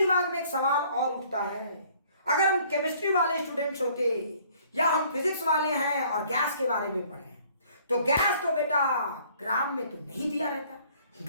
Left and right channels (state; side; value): inverted; both; correlation -0.58